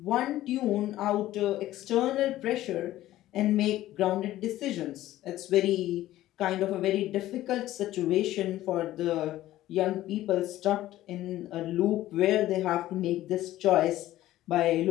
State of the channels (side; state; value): right; quieter; 14.7 dB